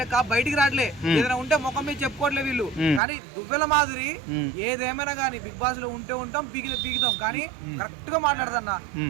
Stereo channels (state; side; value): drops out; left; at 3.0 s